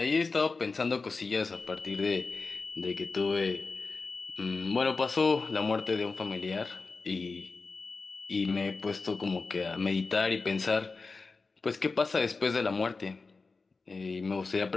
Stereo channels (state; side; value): quieter; right; 4.1 dB